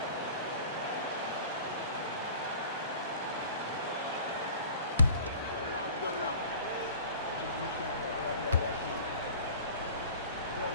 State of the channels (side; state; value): both; inverted; correlation -0.43